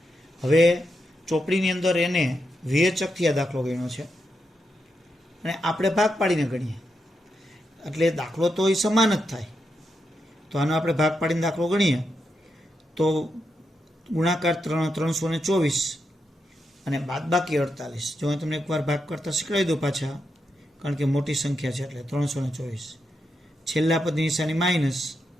હવે ચોપડીની અંદર એને વિવેચકથી આ દાખલો ગણ્યો છે અને આપણે ભાગ પાડીને ગણીએ એટલે દાખલો તો એ સમાન જ થાય. તો આનો આપણે ભાગ પાડીને દાખલો ગણીએ તો ગુણાકાર 324 અને બાદબાકી 48. જો હું તમને એકવાર ભાગ કરતાં શીખવાડી દઉં પાછા, કારણ કે મોટી સંખ્યા છે એટલે 324. છેલ્લા પદની નિશાની માઇનસ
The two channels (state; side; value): normal; both; correlation 0.84